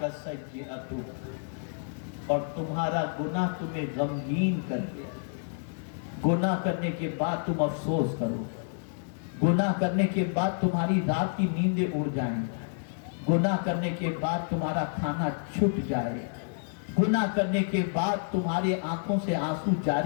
اور تمہارا گناہ تمہیں غمگین کر دیا، گناہ کرنے کے بعد تم افسوس کرو، گناہ کرنے کے بعد تمہاری رات کی نیندیں اڑ جائیں، گناہ کرنے کے بعد تمہارا کھانا چھٹ جائے، گناہ کرنے کے بعد تمہارے آنکھوں سے آنسو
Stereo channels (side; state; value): right; silent; digital silence